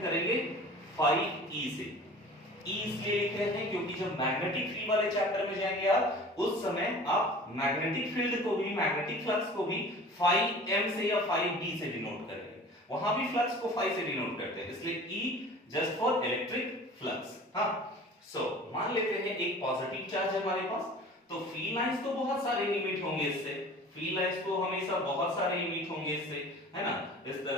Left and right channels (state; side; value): normal; both; correlation 0.42